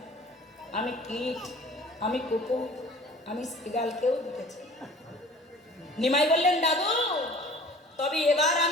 আমি কীট, আমি কুকুর, আমি শ্রীগালকেও দেখেছি। নিমাই বললেন, দাদু, তবে এবার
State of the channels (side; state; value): both; normal; correlation 0.46